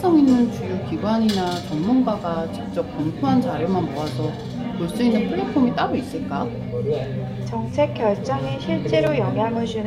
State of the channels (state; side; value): identical; both; correlation 1.00